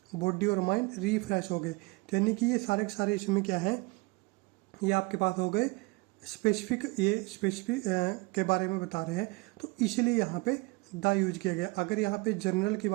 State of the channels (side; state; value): left; quieter; 25.7 dB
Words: बॉडी और माइंड रिफ्रेश हो गए। तो यानी कि ये सारे के सारे इसमें क्या है, ये आपके पास हो गए स्पेसिफिक, ये स्पेसिफिक के बारे में बता रहे हैं, तो इसलिए यहाँ पे द यूज किया गया। अगर यहाँ पे जनरल की